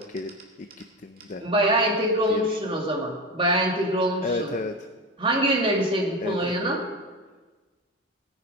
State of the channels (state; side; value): normal; both; correlation 0.22